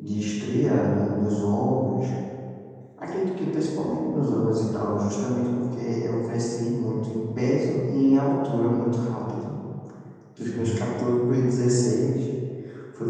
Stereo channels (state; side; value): identical; both; correlation 1.00